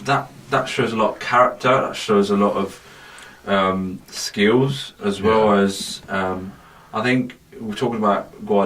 that shows a lot of character. That shows a lot of skills as well as I think we're talking about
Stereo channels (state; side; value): identical; both; correlation 1.00